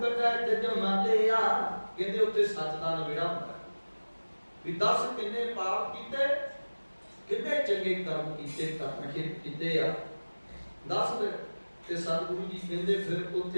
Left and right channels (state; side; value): inverted; both; correlation -1.00